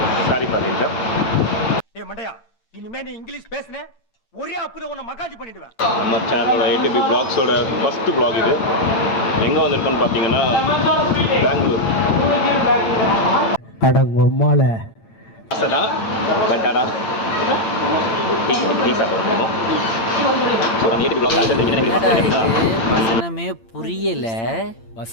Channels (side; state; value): right; late; 8.8 ms